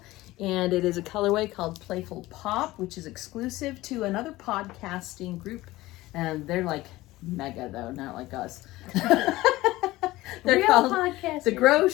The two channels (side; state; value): right; quieter; 18.2 dB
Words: and it is a colorway called Playful Pop, which is exclusive to another podcasting group, and they're like mega though, not like us. They're Real called podcasters. the